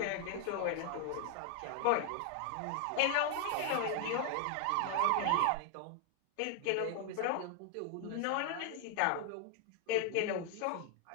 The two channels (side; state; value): both; different; correlation 0.00